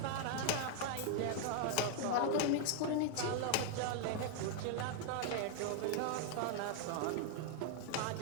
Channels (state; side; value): different; both; correlation 0.00